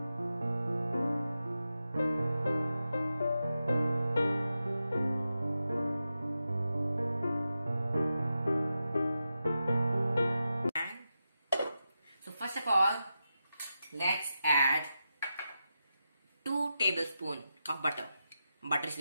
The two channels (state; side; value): inverted; both; correlation -0.89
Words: first of all, let's add 2 tablespoons of butter. Butter is